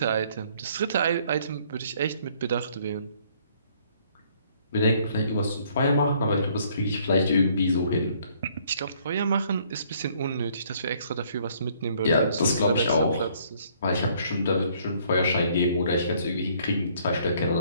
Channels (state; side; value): inverted; both; correlation -0.63